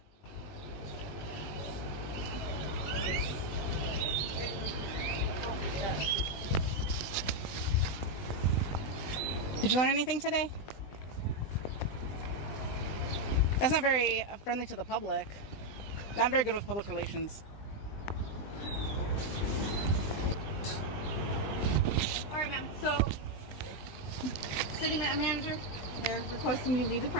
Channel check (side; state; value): right; late; 20 ms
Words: Did you learn anything today? That's not very friendly to the public. Not very good with public relations. All right, ma'am. So, city manager, they're requesting you leave the